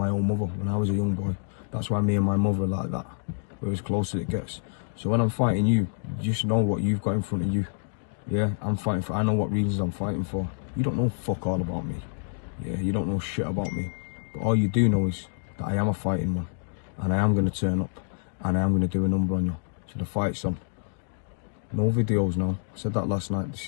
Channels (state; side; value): silent; right; digital silence